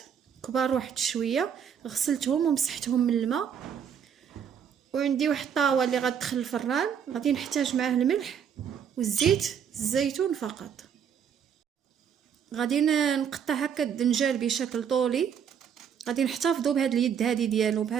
كبار واحد شويه، غسلتهم ومسحتهم من الماء. وعندي واحد الطاوه اللي غتدخل الفران، غادي نحتاج معاه الملح والزيت الزيتون فقط. غادي نقطع هكا الدنجال بشكل طولي. غادي نحتفظوا بهاد اليد هذه ديالو،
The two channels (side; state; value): left; quieter; 7.9 dB